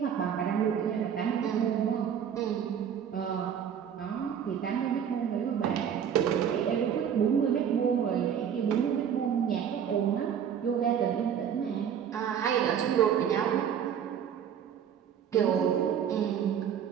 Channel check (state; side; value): quieter; left; 8.4 dB